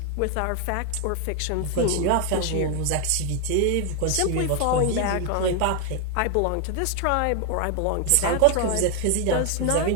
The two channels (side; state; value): both; different; correlation 0.01